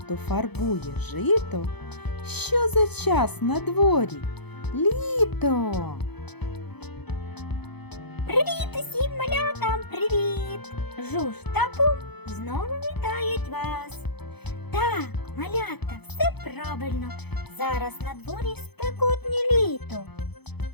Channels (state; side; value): late; right; 0.98 ms